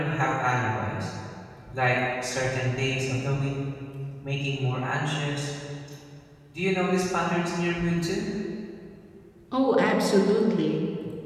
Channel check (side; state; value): both; identical; correlation 1.00